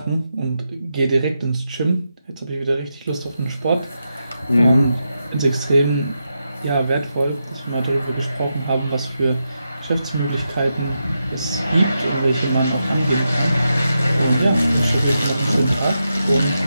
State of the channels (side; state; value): both; inverted; correlation -0.86